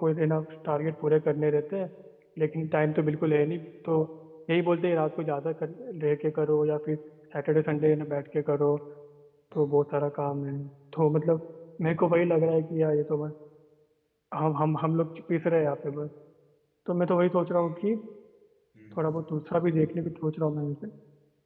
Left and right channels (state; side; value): identical; both; correlation 1.00